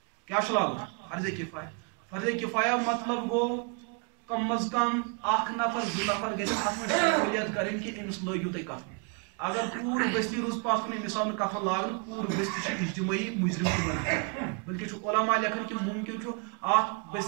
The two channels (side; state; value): left; quieter; 35.3 dB